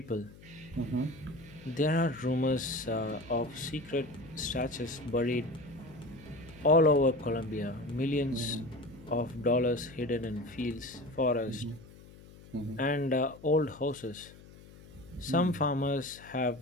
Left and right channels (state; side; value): noise; left; hum, 20 dB below the sound